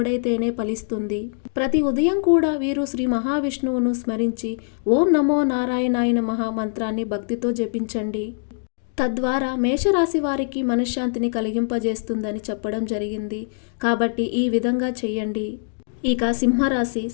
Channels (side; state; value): right; silent; digital silence